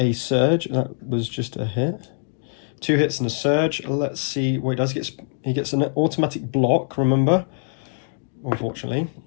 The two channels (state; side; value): silent; right; digital silence